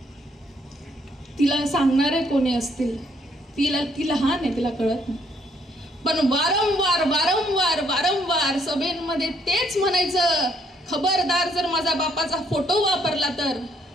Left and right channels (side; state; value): both; normal; correlation 0.69